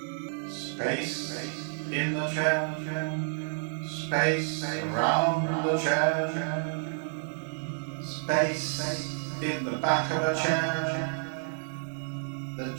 Space in the chair. Space around the chair. Space in the back of a chair. The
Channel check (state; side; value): silent; left; 57 dB below the other